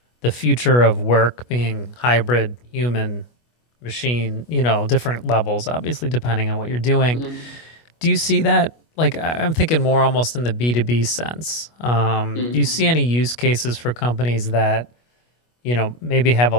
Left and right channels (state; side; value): late; right; 25 ms